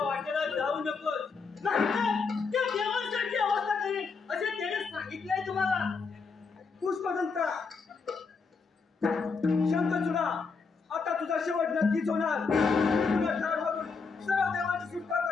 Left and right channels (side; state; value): right; quieter; 4.9 dB